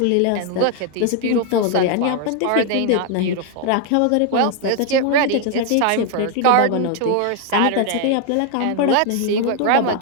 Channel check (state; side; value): different; both; correlation 0.00